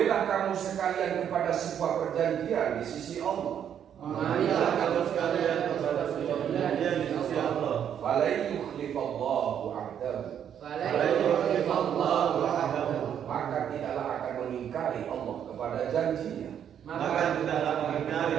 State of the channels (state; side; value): quieter; left; 9.0 dB